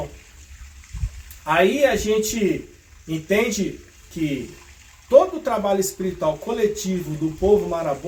Aí a gente entende que todo o trabalho espiritual coletivo do povo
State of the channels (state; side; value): identical; both; correlation 1.00